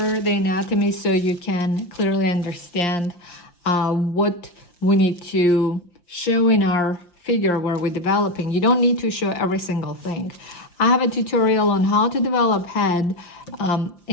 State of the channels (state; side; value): late; right; 5.8 ms